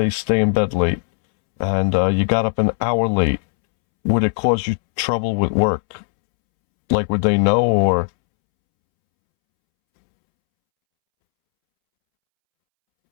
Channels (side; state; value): right; silent; 67 dB below the other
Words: stay in bed late, and you got up an hour late, would it cause you trouble with work? Like, would they know, or?